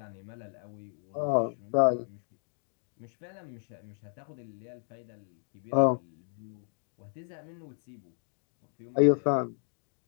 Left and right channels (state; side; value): silent; right; digital silence